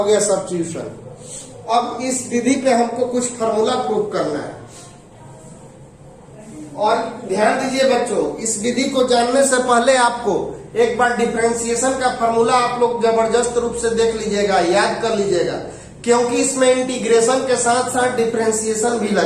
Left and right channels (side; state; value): both; identical; correlation 1.00